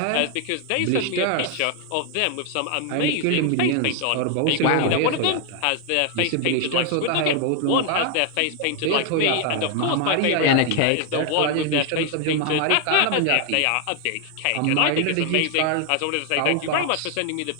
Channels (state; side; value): different; both; correlation 0.01